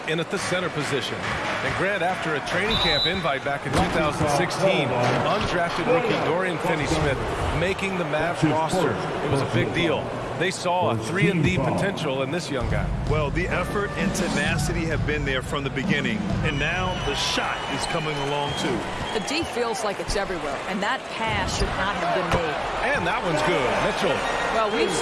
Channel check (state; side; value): identical; both; correlation 1.00